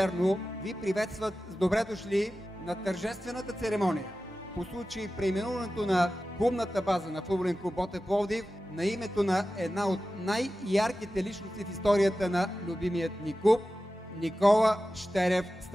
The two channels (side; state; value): both; normal; correlation 0.94